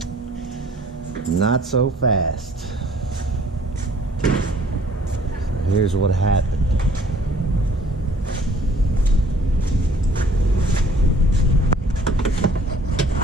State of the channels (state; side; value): normal; both; correlation 0.56